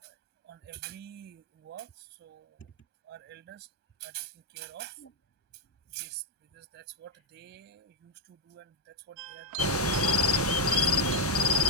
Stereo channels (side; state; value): both; normal; correlation 0.00